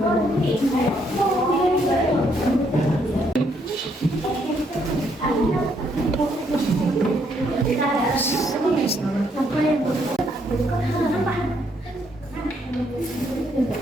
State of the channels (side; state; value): both; normal; correlation 0.72